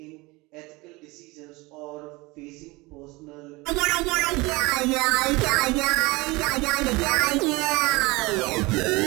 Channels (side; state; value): left; quieter; 23.2 dB